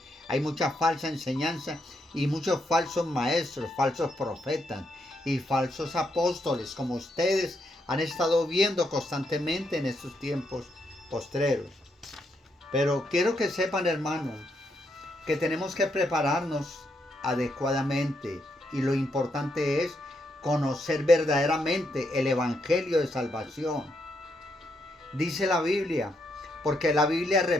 Hay mucha falsa enseñanza y muchos falsos maestros, falsos profetas y falsos apóstoles, como ustedes han estado viendo constantemente en estos tiempos postreros. Pero quiero que sepan, hermanos, que tenemos que prepararnos adecuadamente, y lo importante es conocer verdaderamente el evangelio de salvación. Dice la Biblia, porque la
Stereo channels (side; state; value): both; normal; correlation 0.78